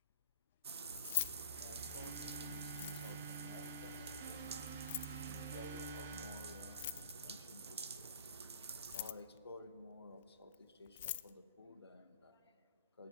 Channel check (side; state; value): both; inverted; correlation -0.42